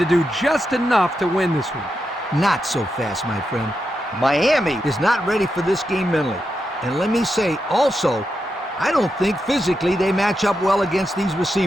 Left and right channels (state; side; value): normal; both; correlation 0.86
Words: do just enough to win this one. Not so fast, my friend. Miami is not ready for this game mentally. And let me say also, I don't think physically they match up well against these